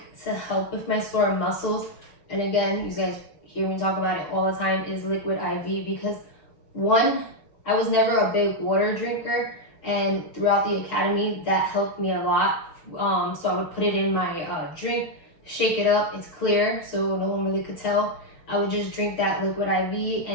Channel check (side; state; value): right; late; 6.3 ms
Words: to help with my sore muscles, and again, you guys hear me talk about it all the time, is liquid IV, because one, I was never a big water drinker, and throughout the academy that helped me a lot. So I would put it in my drink, shake it up, it's clear, so no one really could tell. I would just drink that liquid IV,